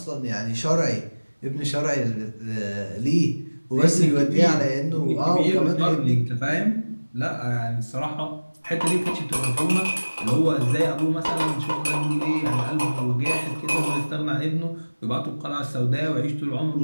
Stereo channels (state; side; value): inverted; both; correlation -1.00